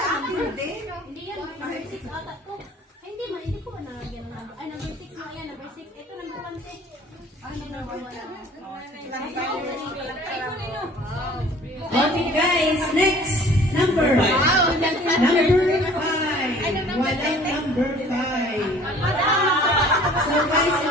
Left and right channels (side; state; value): both; normal; correlation 0.50